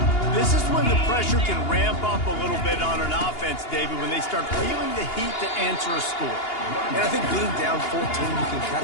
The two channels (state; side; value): late; right; 2.8 ms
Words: This is when the pressure can ramp up a little bit on an offense, David, when they start feeling the heat to answer a score. And I think being down 14, you can kind